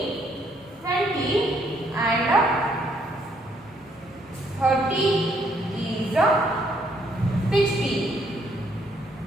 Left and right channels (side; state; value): both; normal; correlation 0.69